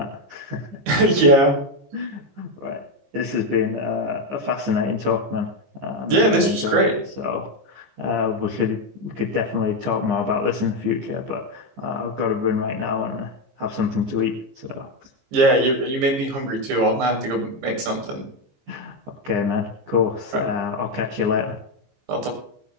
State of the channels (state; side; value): late; left; 15 ms